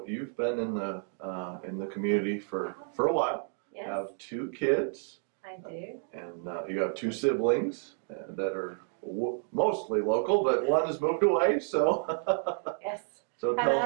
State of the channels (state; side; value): silent; left; 57 dB below the other